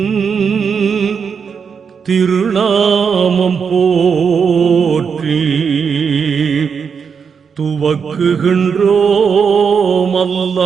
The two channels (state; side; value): quieter; left; 6.3 dB